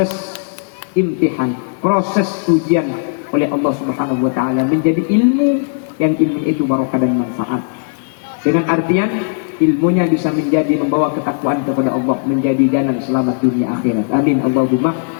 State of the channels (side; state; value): right; silent; digital silence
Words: imtihan, proses ujian oleh Allah Subhanahu wa taala menjadi ilmu yang ilmu itu barokah dan manfaat. Dengan artian ilmunya bisa menjadi membawa ketakwaan kepada Allah, menjadi jalan selamat dunia akhirat. Amin Allahumma.